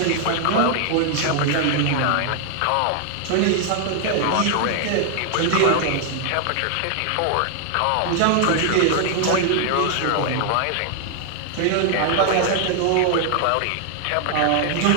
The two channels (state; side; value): different; both; correlation 0.00